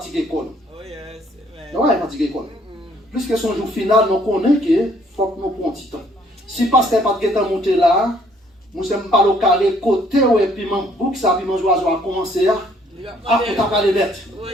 l'école. Oh yes, amen. Non, ouais, fatiguer l'école. Puisque son jour final, nous connaissons qu'il faut que nous prenions du temps. Si parce qu'elle n'a pas de temps monter là, nous sommes pas au carré côté et puis mon bouc, ça, puis mon oiseau a commencé à. Ah, on t'a pas les lettres. Oui,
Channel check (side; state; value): both; normal; correlation 0.63